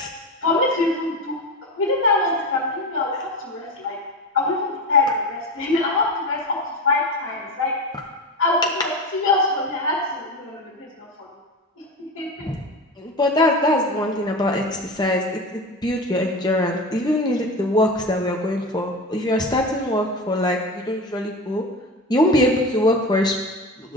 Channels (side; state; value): both; normal; correlation 0.25